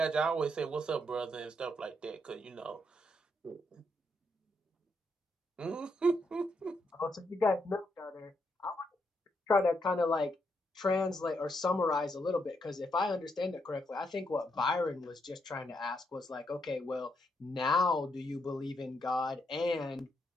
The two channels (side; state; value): both; normal; correlation 0.79